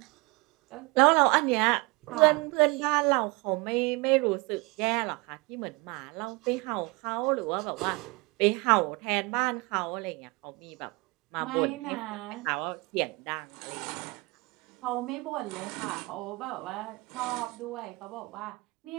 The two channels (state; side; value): quieter; left; 26.3 dB